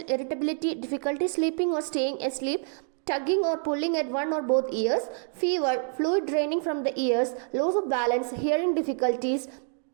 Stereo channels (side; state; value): left; silent; 56 dB below the other